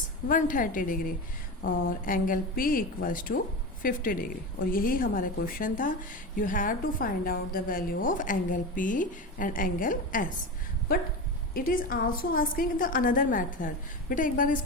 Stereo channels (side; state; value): both; normal; correlation 0.23